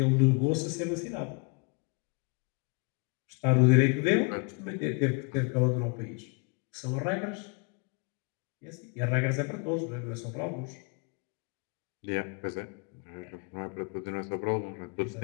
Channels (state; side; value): quieter; right; 34.8 dB